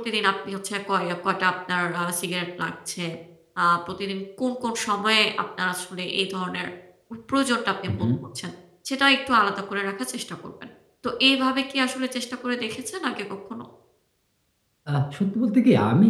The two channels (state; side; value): identical; both; correlation 1.00